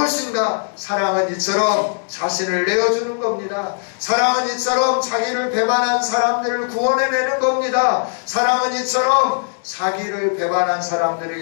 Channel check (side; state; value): right; silent; digital silence